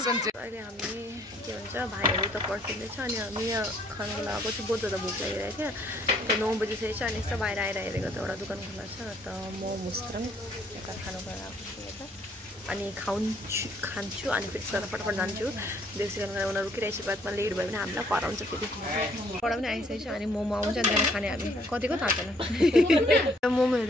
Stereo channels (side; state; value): both; normal; correlation 0.64